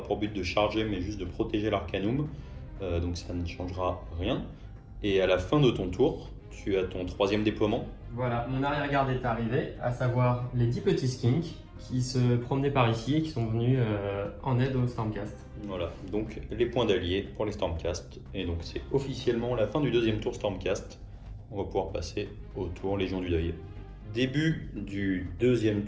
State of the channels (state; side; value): identical; both; correlation 1.00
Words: pour but de charger, mais juste de protéger l'Arcanum. Donc ça ne changera rien. Et à la fin de ton tour, tu as ton troisième déploiement. Voilà, mon arrière-garde est arrivé, à savoir les 10 petits skinks qui se promenaient par ici et qui sont venus en aide au Stormcast. Voilà, donc les points d'alliés pour les Stormcast. Et donc c'est officiellement la fin du deuxième tour Stormcast. On va pouvoir passer au tour Légion du Deuil. Début du deuxième